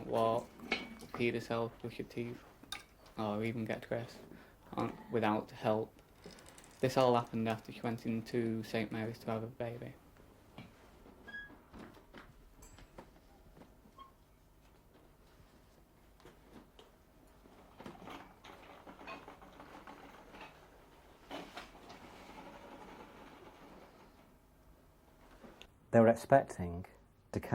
walk, feed herself, brush her teeth, or even get dressed without help. This all happened after she went into St Mary's to have a baby. They were expecting to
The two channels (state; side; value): identical; both; correlation 1.00